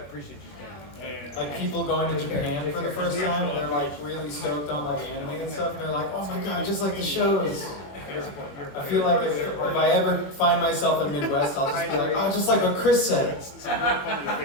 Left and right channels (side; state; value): right; late; 21 ms